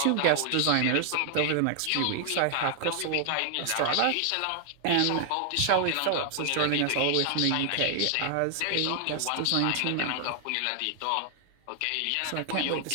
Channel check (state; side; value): different; both; correlation 0.00